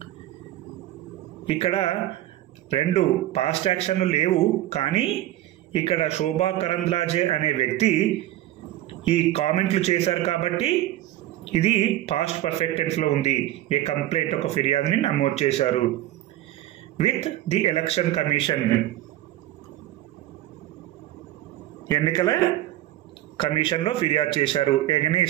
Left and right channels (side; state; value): left; quieter; 14.6 dB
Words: ఇక్కడ 2 పాస్ట్ యాక్షన్లు లేవు. కానీ ఇక్కడ శోభా కరంద్లాజే అనే వ్యక్తి ఈ కామెంట్లు చేశారు కాబట్టి ఇది పాస్ట్ పర్ఫెక్ట్ టెన్స్ లో ఉంది. ఏ కంప్లైంట్, ఒక ఫిర్యాదుని నమోదు చేశారు. విత్ ది ఎలక్షన్ కమిషన్, ఎన్నికల కమిషన్లో ఫిర్యాదు చేశారు.